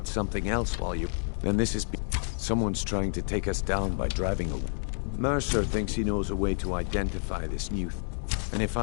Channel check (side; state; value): right; silent; digital silence